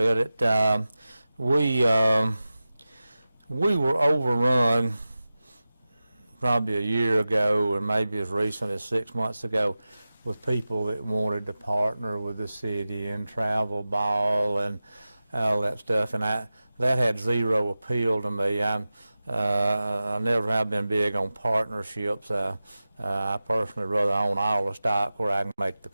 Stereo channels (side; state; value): both; inverted; correlation -0.95